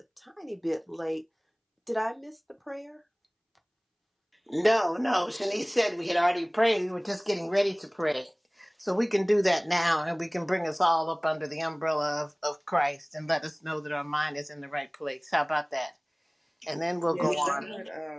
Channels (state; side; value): identical; both; correlation 1.00